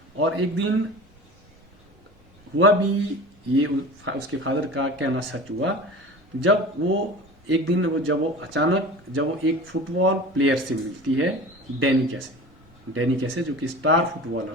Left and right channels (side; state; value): both; normal; correlation 0.36